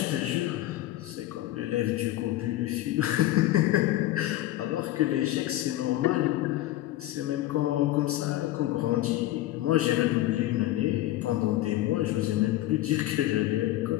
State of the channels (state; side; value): quieter; right; 15.3 dB